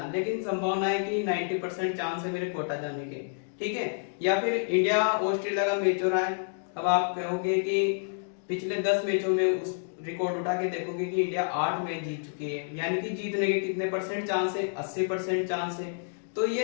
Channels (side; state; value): right; silent; digital silence